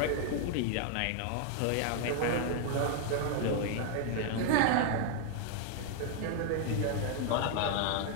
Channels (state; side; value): different; both; correlation 0.00